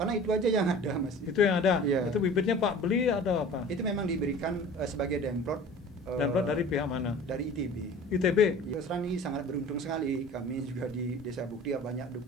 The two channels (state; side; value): normal; both; correlation 0.42